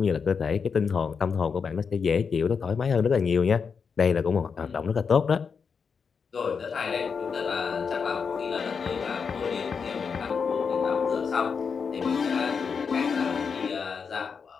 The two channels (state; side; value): quieter; right; 5.9 dB